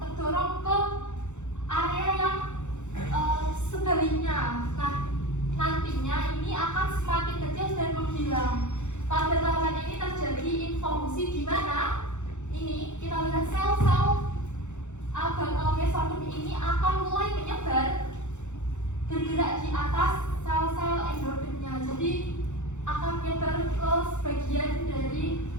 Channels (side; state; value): right; late; 0.84 ms